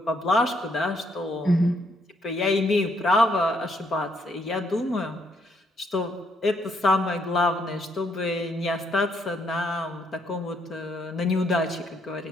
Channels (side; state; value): both; normal; correlation 0.72